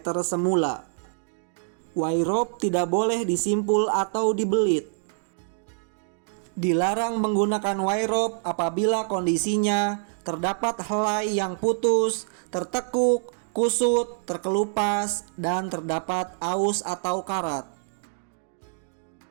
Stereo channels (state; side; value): silent; left; digital silence